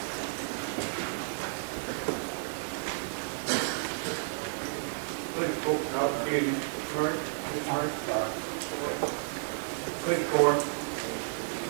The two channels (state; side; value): silent; left; digital silence